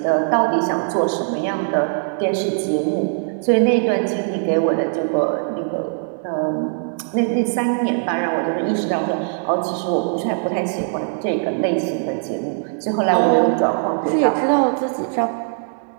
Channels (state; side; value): silent; left; digital silence